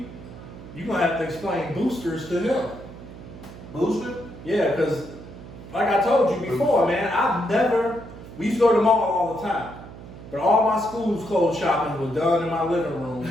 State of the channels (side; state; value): right; noise; hum, 15 dB below the sound